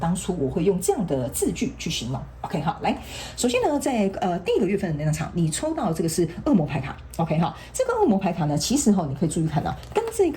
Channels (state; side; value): identical; both; correlation 1.00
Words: 初我会用这样的字句去形容。OK 好，来，首先呢，在第一个月份的能量场，你抽到这个是恶魔牌卡。OK 好，这个恶魔牌卡呢，其实你可以注意看到，跟这